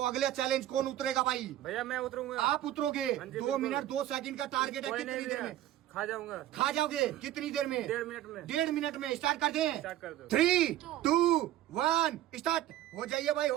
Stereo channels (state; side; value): quieter; left; 13.4 dB